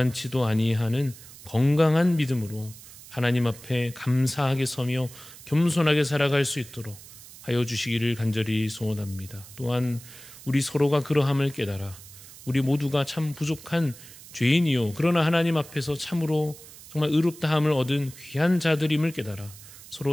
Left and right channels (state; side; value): noise; right; hiss, 18 dB below the sound